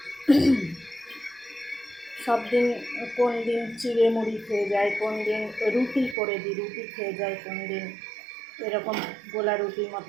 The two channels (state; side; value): drops out; left; at 6.2 s